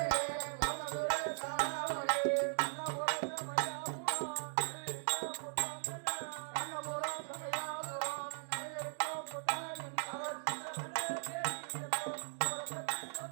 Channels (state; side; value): silent; left; digital silence